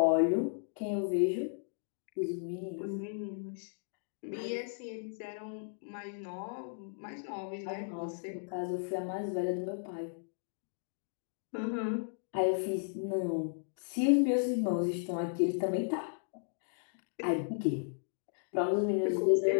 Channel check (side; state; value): right; silent; digital silence